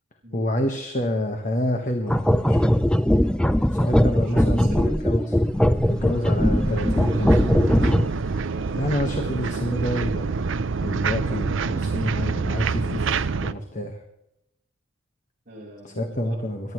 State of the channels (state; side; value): normal; both; correlation 0.85